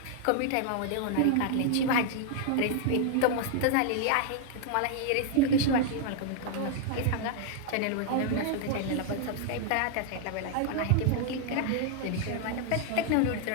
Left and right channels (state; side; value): different; both; correlation 0.00